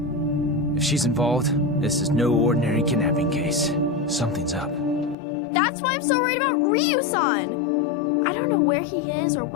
If she's involved, this is no ordinary kidnapping case. Something's up. That's why I'm so worried about Ryu-san! I don't know where he is or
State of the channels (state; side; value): drops out; right; at 5.2 s